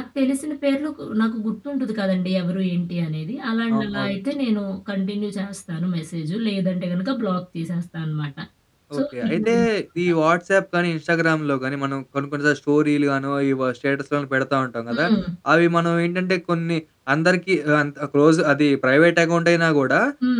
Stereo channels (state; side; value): identical; both; correlation 1.00